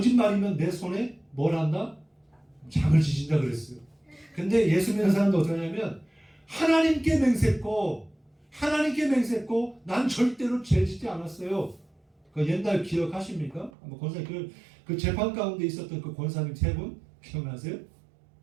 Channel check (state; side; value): drops out; left; at 13.7 s